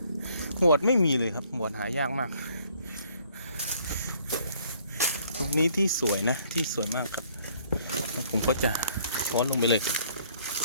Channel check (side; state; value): both; inverted; correlation -0.62